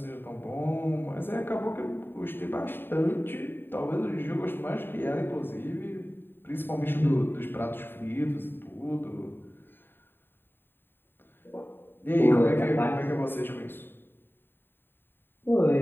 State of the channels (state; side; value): late; right; 0.098 ms